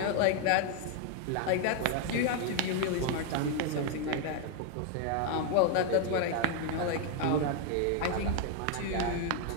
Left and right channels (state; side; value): different; both; correlation 0.01